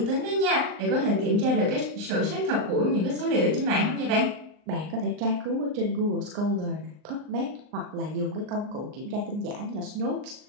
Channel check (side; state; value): left; late; 39 ms